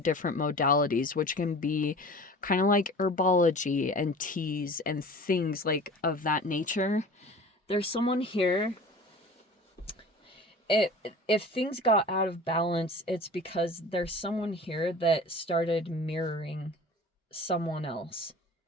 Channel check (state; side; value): normal; both; correlation 0.41